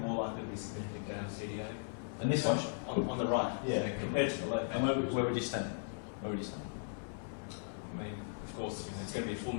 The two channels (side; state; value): right; silent; digital silence